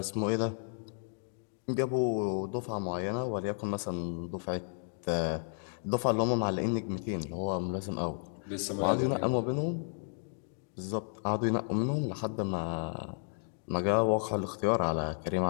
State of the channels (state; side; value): silent; right; digital silence